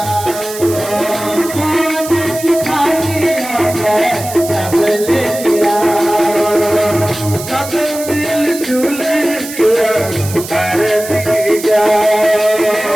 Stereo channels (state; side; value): noise; right; hiss, 11 dB below the sound